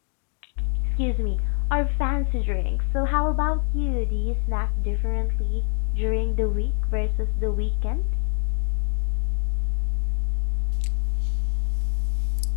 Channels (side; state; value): right; silent; digital silence